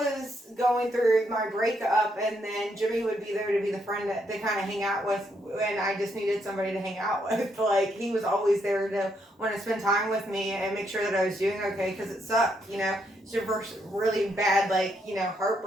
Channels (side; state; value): both; normal; correlation 0.76